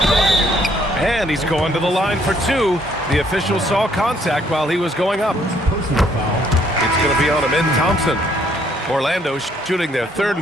one. And he's going to the line for two. The official saw contact while he was going up. Personal foul. It's going to be on Amin Thompson. Orlando shooting their third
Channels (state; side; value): normal; both; correlation 0.66